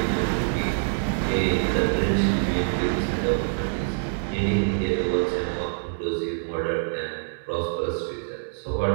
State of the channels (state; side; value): silent; left; 61 dB below the other